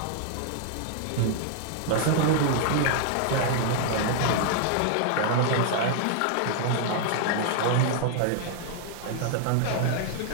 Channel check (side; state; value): both; different; correlation 0.00